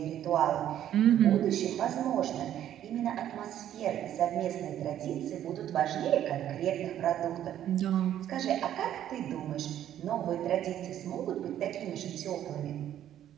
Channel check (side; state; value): left; quieter; 11.2 dB